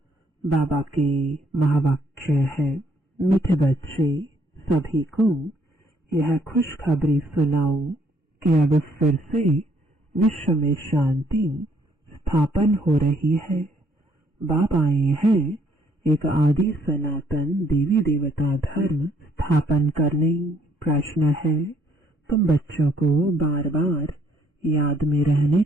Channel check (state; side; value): normal; both; correlation 0.67